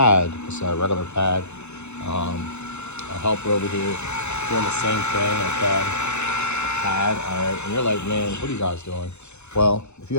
It's a regular pad. A helper over here doing the same thing. Okay, pad. All right, and you're like, man, what are you guys doing? Well, if you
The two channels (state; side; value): late; right; 0.82 ms